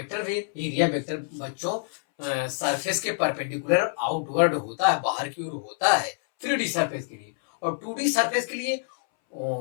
है। एरिया वेक्टर बच्चों सरफेस के परपेंडिकुलर आउटवर्ड होता है, बाहर की ओर होता है 3D सरफेस के लिए, और 2D सरफेस के लिए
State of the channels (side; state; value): right; silent; 61 dB below the other